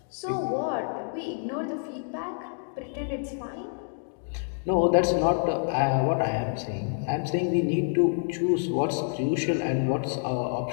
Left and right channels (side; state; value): right; silent; digital silence